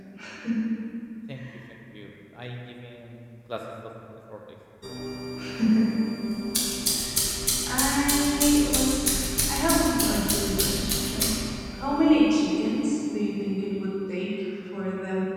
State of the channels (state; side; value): identical; both; correlation 1.00